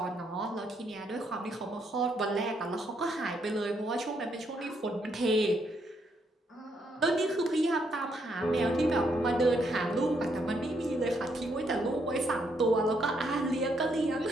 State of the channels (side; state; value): both; normal; correlation 0.75